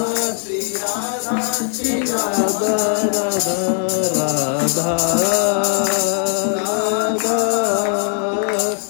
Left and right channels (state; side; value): silent; right; 59 dB below the other